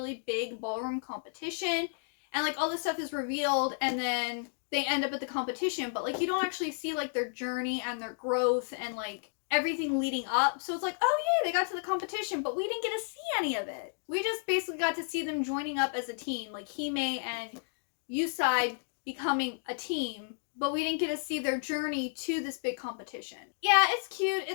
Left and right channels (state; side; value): silent; right; digital silence